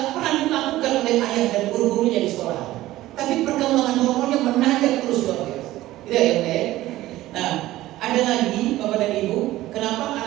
pernah dilakukan oleh ayah dan guru-gurunya di sekolah. Tapi perkembangan hormonnya menanjak terus luar biasa. Tidak ya, Nah, ada lagi Bapak dan Ibu, kenapa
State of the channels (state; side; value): quieter; left; 16.0 dB